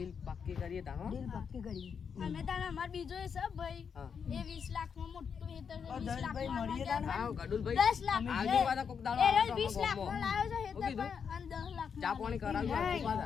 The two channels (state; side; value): quieter; right; 6.7 dB